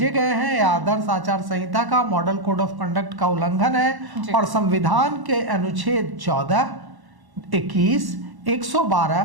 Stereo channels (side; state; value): left; late; 1.1 ms